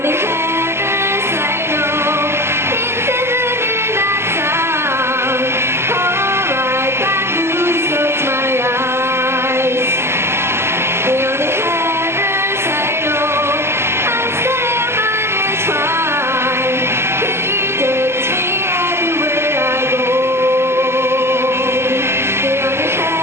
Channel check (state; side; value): late; left; 0.12 ms